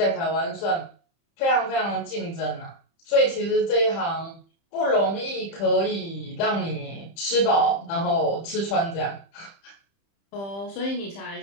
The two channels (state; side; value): late; right; 30 ms